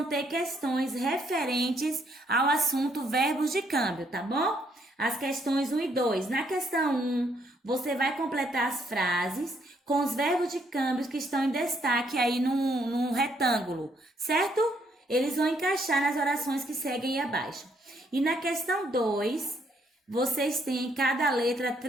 ter questões referentes ao assunto verbos de câmbio, tá bom? As questões 1 e 2. Na questão 1, você vai completar as frases com os verbos de câmbio que estão em destaque aí num retângulo, certo? Eles vão encaixar nas orações que seguem aí abaixo. E na questão 2, vocês têm em cada letra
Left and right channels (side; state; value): both; normal; correlation 0.70